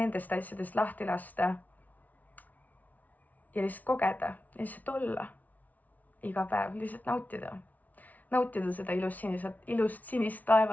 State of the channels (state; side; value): late; right; 0.075 ms